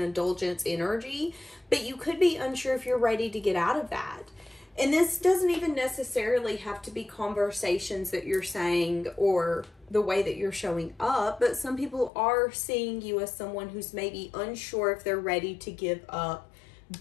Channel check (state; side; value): drops out; right; at 12.1 s